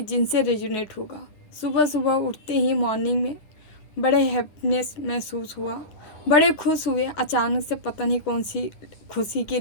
जिनसे रेजोनेट होगा। सुबह सुबह उठते ही मॉर्निंग में बड़े हैप्पीनेस महसूस हुआ, बड़े खुश हुए। अचानक से पता नहीं कौन सी खुशी की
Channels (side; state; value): right; late; 9.6 ms